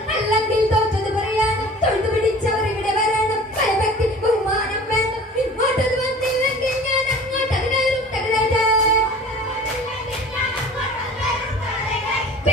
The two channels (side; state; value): both; normal; correlation 0.44